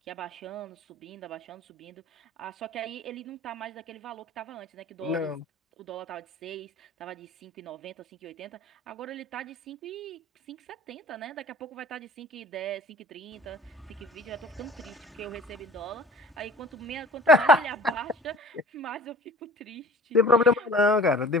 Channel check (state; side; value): normal; both; correlation 0.46